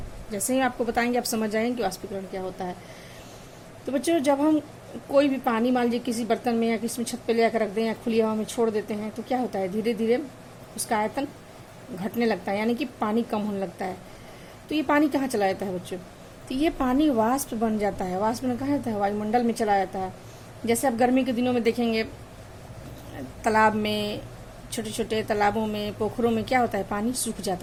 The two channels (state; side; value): identical; both; correlation 1.00